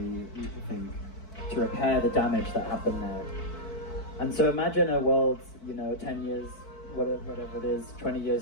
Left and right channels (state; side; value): late; right; 4.6 ms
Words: think, to repair the damage that happened there. And so imagine a world, 10 years, whatever it is, 20